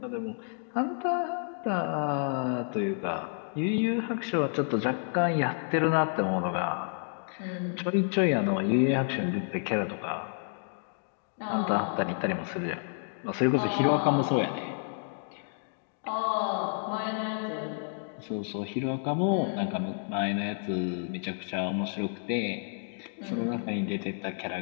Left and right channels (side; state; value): right; silent; digital silence